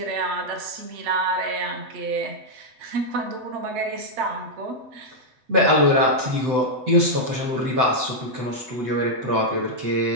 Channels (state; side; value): late; left; 8.0 ms